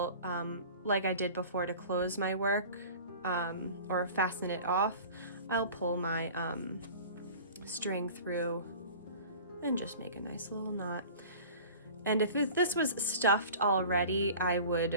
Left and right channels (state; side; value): inverted; both; correlation -0.41